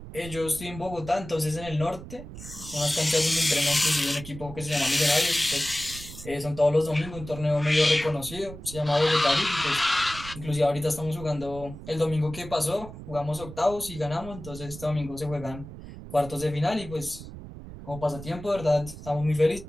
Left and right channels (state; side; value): noise; right; rumble, 13 dB below the sound